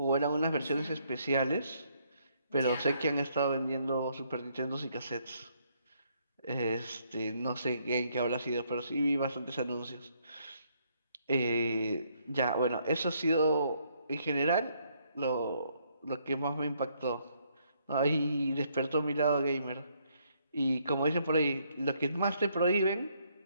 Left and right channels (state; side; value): inverted; both; correlation -0.71